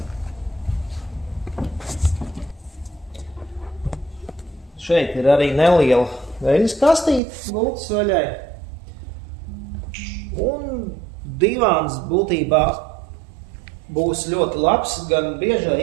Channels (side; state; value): left; drops out; at 7.2 s